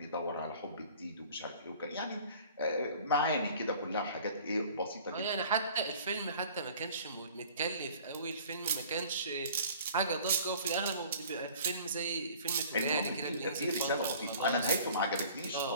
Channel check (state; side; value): inverted; both; correlation -0.48